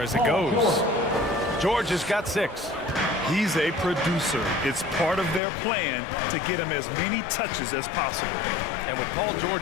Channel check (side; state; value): right; drops out; at 5.4 s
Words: as it goes. George has got 6. He's a producer. It's part of their plan to get him as many touches as possible. And with Paul